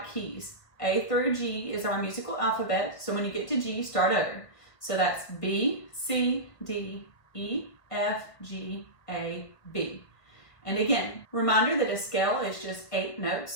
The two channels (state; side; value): late; right; 1.7 ms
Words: keys. A through G is our musical alphabet, so when you get to G, start over. So that's B, C, D, E, F, G, A, B. And again, reminder that a scale is just 8